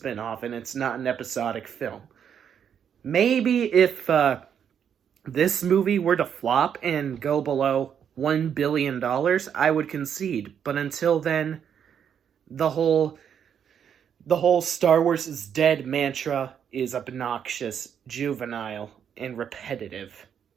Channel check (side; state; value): left; quieter; 8.3 dB